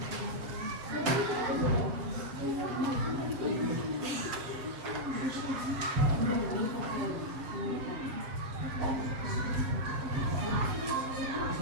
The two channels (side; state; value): left; late; 7.5 ms